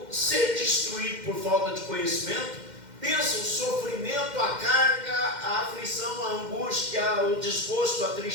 ser destruído por falta de conhecimento, pensa o sofrimento, a carga, a aflição, a angústia, o desgosto, a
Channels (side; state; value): left; late; 2.1 ms